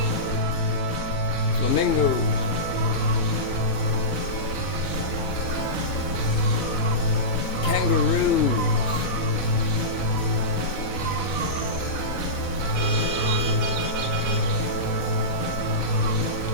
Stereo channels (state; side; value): late; right; 4.0 ms